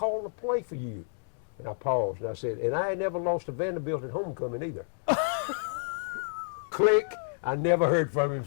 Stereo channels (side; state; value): right; silent; digital silence